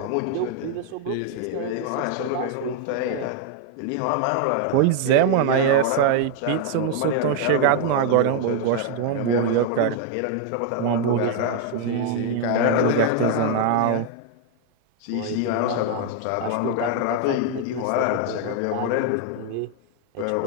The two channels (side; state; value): both; different; correlation 0.00